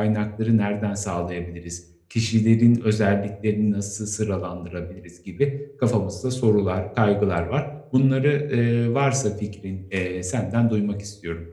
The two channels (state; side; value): identical; both; correlation 1.00